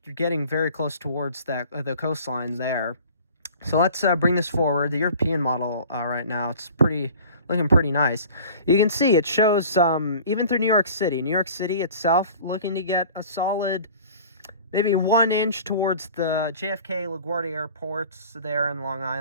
you're getting very close towards the coastlines there. So let's bring this forward. The European model right now, it's looking pretty nice. You can see it shows even through New York City. New York City itself looking to get a solid maybe 1 inch towards the JFK LaGuardia airports there in Long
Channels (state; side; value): inverted; both; correlation -0.44